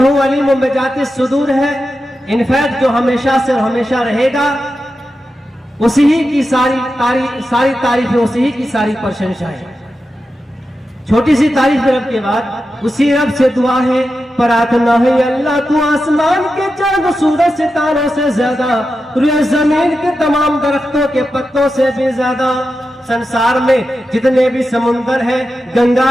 अलीमुम बिज़ाति सुदूर है, इनफैक्ट जो हमेशा से हमेशा रहेगा, उसी ही की सारी तारीफ है, उसी ही की सारी प्रशंसा है. छोटी सी तारीफ रब के बाद उसी रब से दुआ है, प्रार्थना है, अल्लाह तू आसमान के चांद सूरज सितारों से ज्यादा, रुए जमीन के तमाम दरख्तों के पत्तों से भी ज्यादा, संसार में जितने भी समुंदर है, गंगा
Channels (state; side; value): normal; both; correlation 0.90